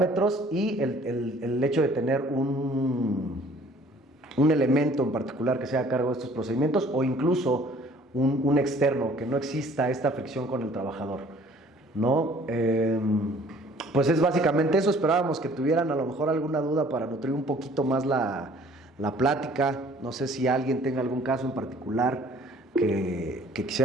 y el hecho de tener un elemento en particular que sea a cargo de estos procedimientos, o incluso un externo, que no exista esta fricción con el trabajador, ¿no? Pues es básicamente eso. Esperábamos que tuvieran a lo mejor alguna duda para nutrir un poquito más la plática. No sé si alguien tenga algún caso en particular que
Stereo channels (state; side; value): normal; both; correlation 0.55